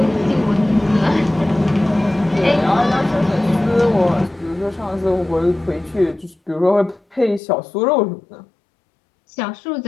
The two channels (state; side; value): drops out; right; at 7.4 s